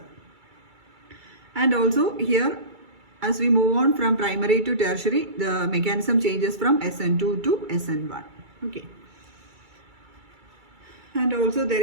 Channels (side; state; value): left; late; 2.3 ms